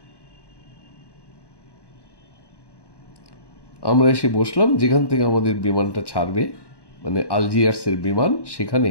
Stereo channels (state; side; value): late; right; 1.1 ms